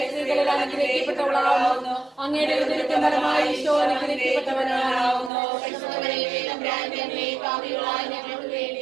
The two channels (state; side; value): drops out; left; at 5.3 s